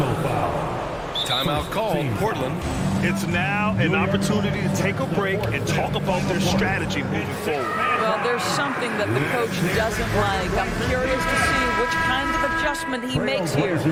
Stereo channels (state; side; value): identical; both; correlation 1.00